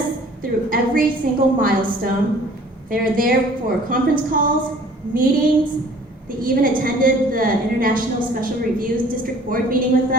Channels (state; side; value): normal; both; correlation 0.52